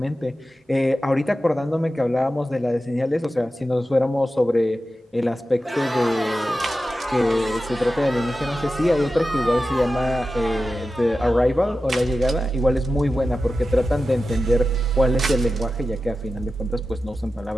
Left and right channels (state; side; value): normal; both; correlation 0.93